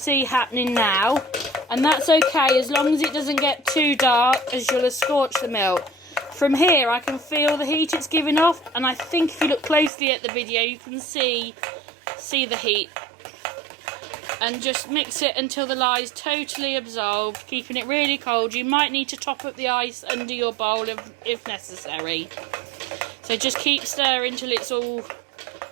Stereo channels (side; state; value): left; drops out; at 9.9 s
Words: happening now, and that's okay as long as it doesn't get too dark, as you'll have scorched the milk. From here I can feel the heat it's giving off, and I think if you look closely at the video you can see the heat. And just mix it until the lye is totally absorbed, keeping it really cold. You might need to top up the ice under your bowl if necessary. So just keep stirring till it's all